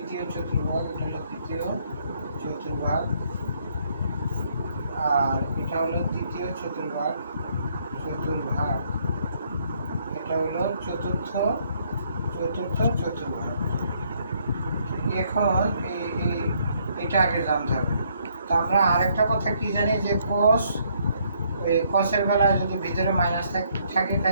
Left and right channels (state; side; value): inverted; both; correlation -0.69